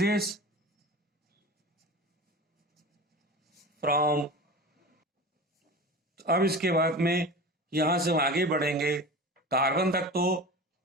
फ्रॉम। अब इसके बाद में यहां से हम आगे बढ़ेंगे कार्बन तक, तो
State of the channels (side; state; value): both; normal; correlation 0.32